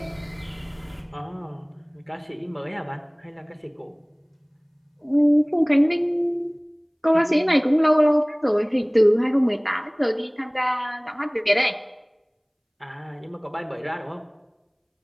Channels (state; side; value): identical; both; correlation 1.00